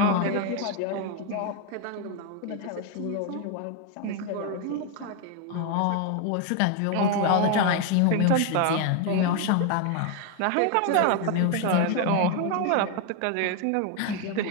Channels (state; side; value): different; both; correlation 0.01